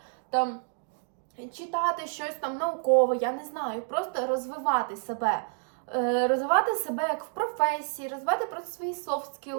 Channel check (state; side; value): silent; left; 58 dB below the other